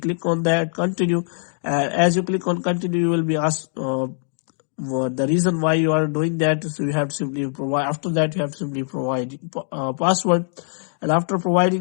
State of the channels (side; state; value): right; silent; digital silence